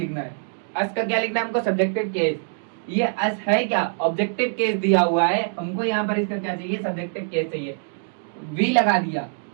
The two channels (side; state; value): left; silent; digital silence